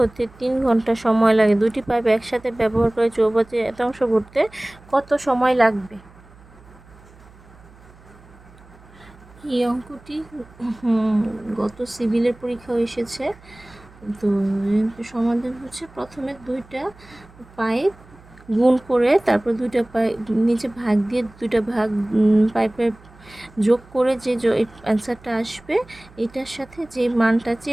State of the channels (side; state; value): right; noise; hum, 24 dB below the sound